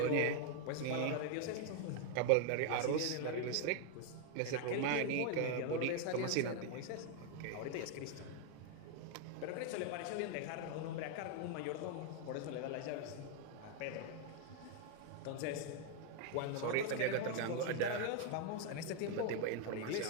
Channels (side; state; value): both; different; correlation 0.00